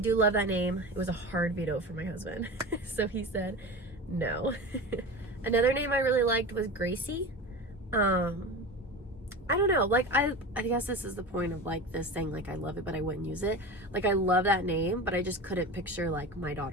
love that name. It was a hard veto for my husband. So he said no. Another name I really liked was Gracie. I don't know, like I guess this is the point of like this saying like I love it but I wouldn't use it. Like I love that name, but I just couldn't picture like my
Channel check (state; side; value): normal; both; correlation 0.29